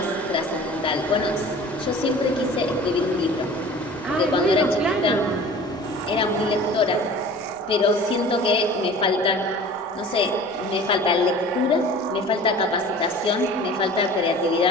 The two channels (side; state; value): both; normal; correlation 0.43